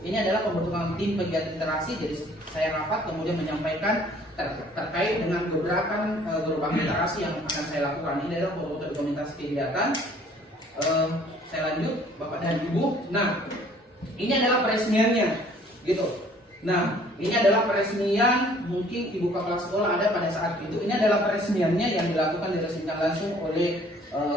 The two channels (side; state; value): both; normal; correlation 0.56